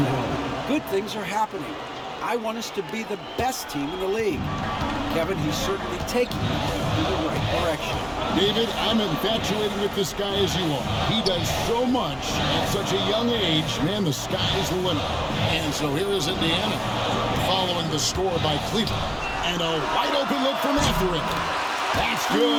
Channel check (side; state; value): both; identical; correlation 1.00